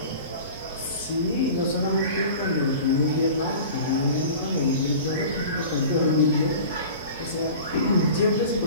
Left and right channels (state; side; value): inverted; both; correlation -0.39